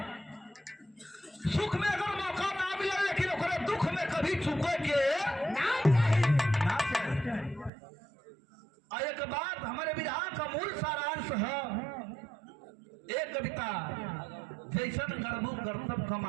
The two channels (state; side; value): drops out; left; at 7.7 s